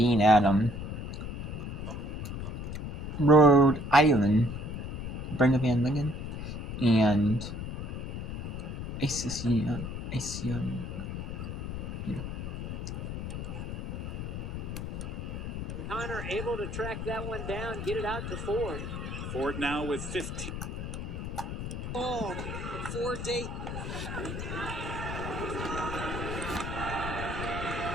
at Rhode Island. Brenda Van Lingen and ACC. Connor able to track that one down, get it out to Ford. Ford now with 15. Oh, Ford Dayton.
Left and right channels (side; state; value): left; noise; rumble, 5 dB below the sound